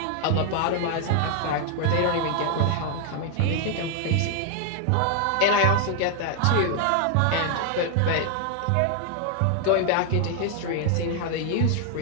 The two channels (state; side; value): different; both; correlation 0.00